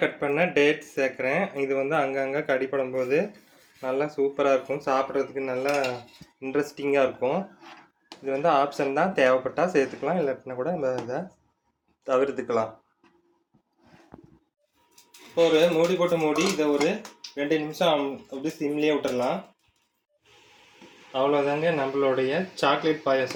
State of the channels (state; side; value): identical; both; correlation 1.00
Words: கட் பண்ண டேட்ஸ் சேர்க்குறேன். இது வந்து அங்கங்கே கடிப்படும் போது நல்லா சூப்பராக இருக்கும், சாப்பிட்றதுக்கு நல்லா இன்ட்ரெஸ்டிங்காக இருக்கும். இது வந்து ஆப்ஷன் தான், தேவைப்பட்டால் சேர்த்துக்கலாம், இல்லாட்டினா கூட நம்ம இதை தவிர்த்துக்கலாம். இப்போ ஒரு மூடி போட்டு மூடி இதை ஒரு 2 நிமிஷம் அப்படி சிம்லேயே விட்டுடலாம். அவ்வளோதாங்க, நம்மளுடைய சாக்லேட்